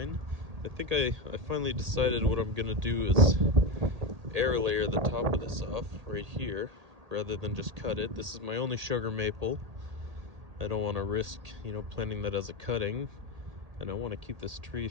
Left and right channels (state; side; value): late; left; 1.8 ms